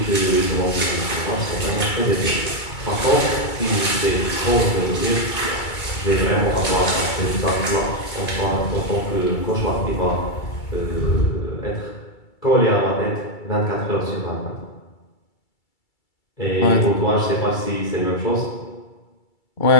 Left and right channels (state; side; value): late; right; 2.3 ms